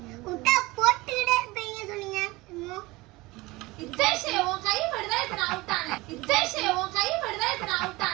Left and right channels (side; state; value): left; quieter; 21.4 dB